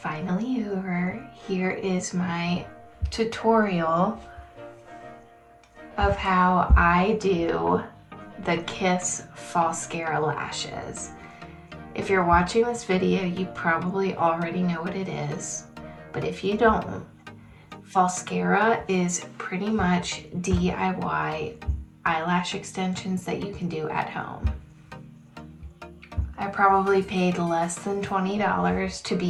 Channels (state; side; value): identical; both; correlation 1.00